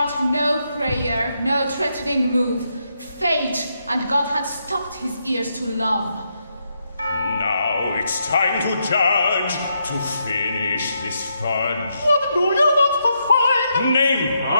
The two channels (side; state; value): both; inverted; correlation -0.80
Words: Move. Fate and God had stopped his ears to love. Now it's time to judge, to finish this fudge. What do you want to find? Name?